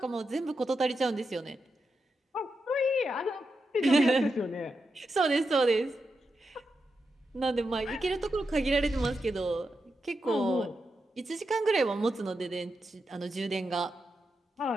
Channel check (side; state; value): both; normal; correlation 0.87